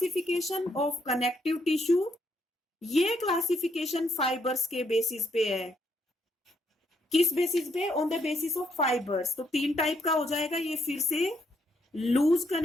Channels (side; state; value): both; normal; correlation 0.74